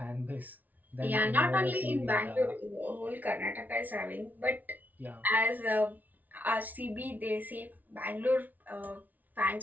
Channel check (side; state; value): left; late; 0.079 ms